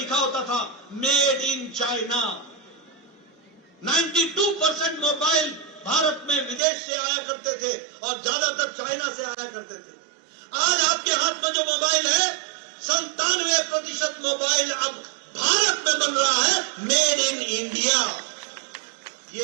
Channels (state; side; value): drops out; left; at 6.6 s